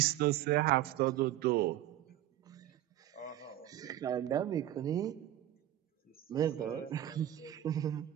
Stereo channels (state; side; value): quieter; left; 13.0 dB